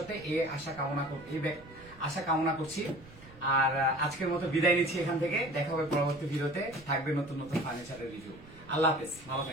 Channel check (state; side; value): noise; right; rumble, 21 dB below the sound